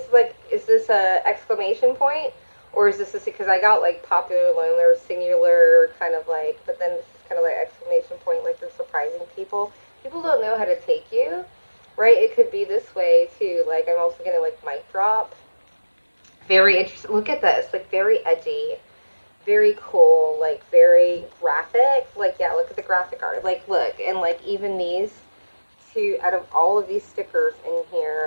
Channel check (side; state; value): both; inverted; correlation -1.00